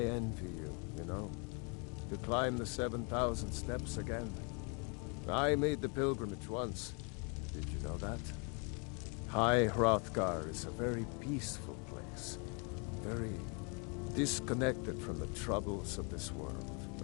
envy you, you know, to climb the 7,000 steps again. I made the pilgrimage once. Did you know that? High Hrothgar is a very peaceful place. Very disconnected from the troubles of this world.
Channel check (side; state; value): right; quieter; 35.6 dB